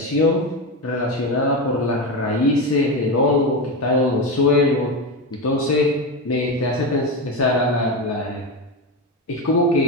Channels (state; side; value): normal; both; correlation 0.16